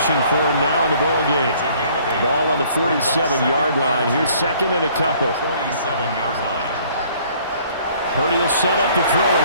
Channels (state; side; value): inverted; both; correlation -0.58